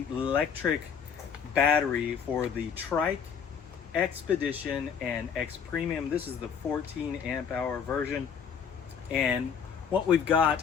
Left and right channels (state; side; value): quieter; right; 7.1 dB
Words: Lectric battery for the Trike, XPedition, and XPremium. This is the 14 amp hour version. And what we've